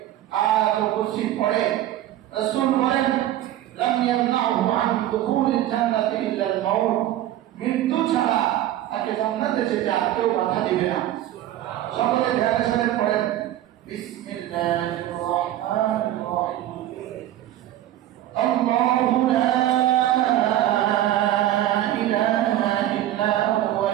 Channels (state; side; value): quieter; left; 13.3 dB